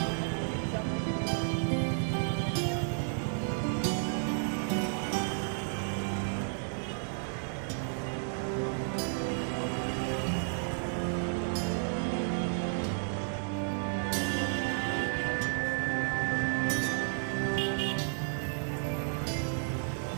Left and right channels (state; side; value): silent; left; 56 dB below the other